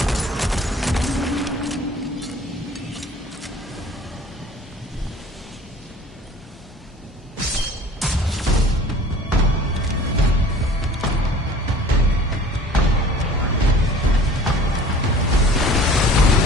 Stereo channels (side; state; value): both; normal; correlation 0.47